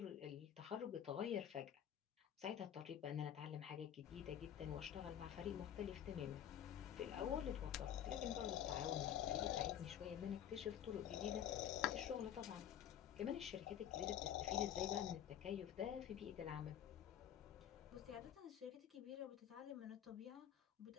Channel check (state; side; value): quieter; right; 10.0 dB